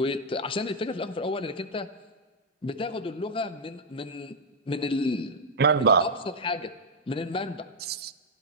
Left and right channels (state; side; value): normal; both; correlation -0.01